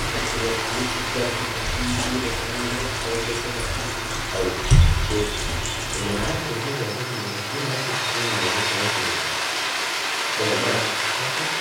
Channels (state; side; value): identical; both; correlation 1.00